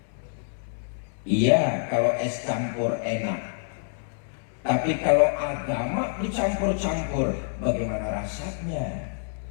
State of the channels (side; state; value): right; silent; 60 dB below the other